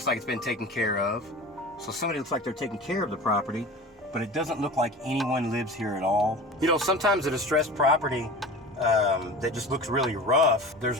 like it's been taken care of. So somebody looks like they're taking care of the property, but it doesn't look like anyone lives here at all. You know, sometimes a distressed property that just looks really rough,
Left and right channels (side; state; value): both; normal; correlation 0.35